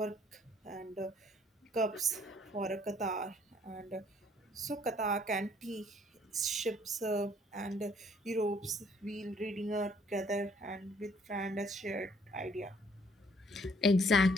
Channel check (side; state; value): both; normal; correlation 0.63